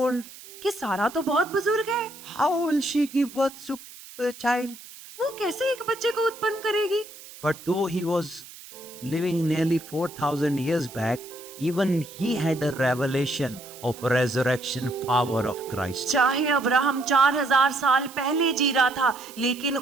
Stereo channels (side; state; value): right; noise; hiss, 17 dB below the sound